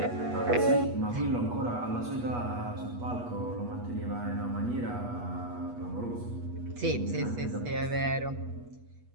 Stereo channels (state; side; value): late; left; 8.3 ms